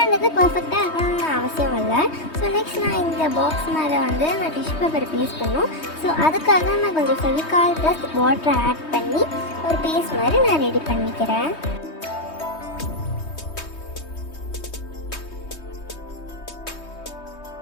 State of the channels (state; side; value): late; right; 3.2 ms